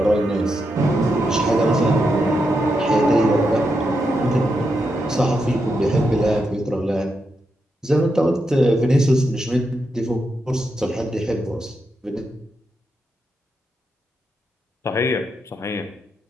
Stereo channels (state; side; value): normal; both; correlation 0.84